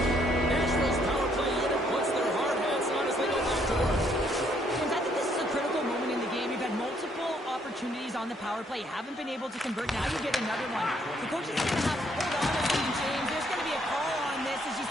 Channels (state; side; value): normal; both; correlation 0.69